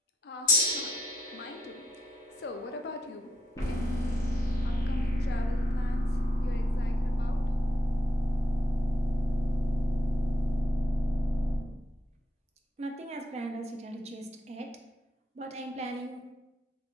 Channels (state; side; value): normal; both; correlation 0.78